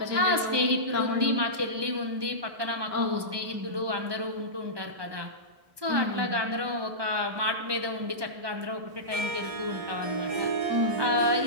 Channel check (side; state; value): left; late; 1.2 ms